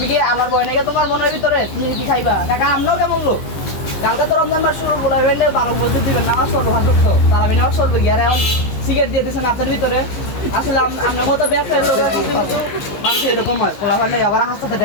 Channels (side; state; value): right; late; 15 ms